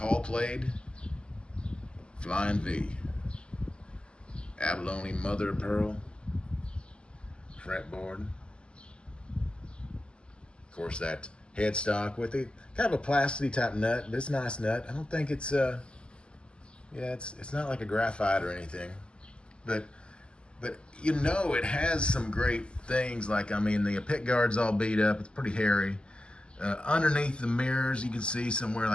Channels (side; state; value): right; late; 0.051 ms